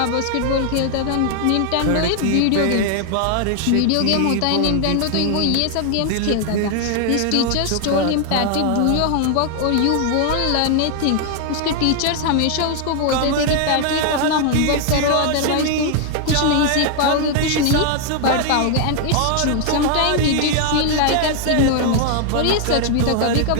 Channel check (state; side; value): different; both; correlation 0.00